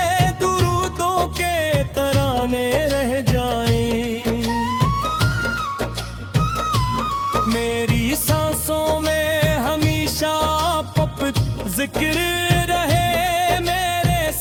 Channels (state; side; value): identical; both; correlation 1.00